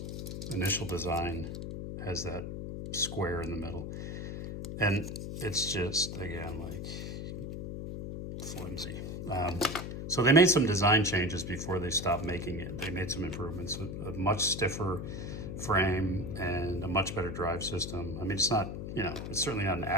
initial design has that square in the middle. And it's just, again, like flimsy. So they made some design changes before they stopped making it. They made some improvements, a much stiffer frame and a much better drive system. I mean, it's not, it's certainly not an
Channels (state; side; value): noise; left; hum, 6 dB below the sound